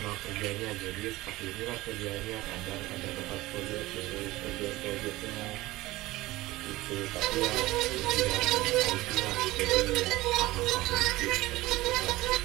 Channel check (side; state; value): left; quieter; 18.6 dB